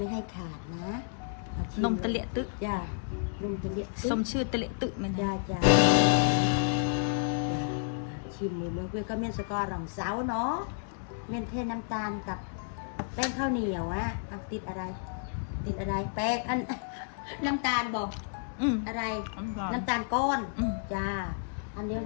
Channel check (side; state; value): right; silent; digital silence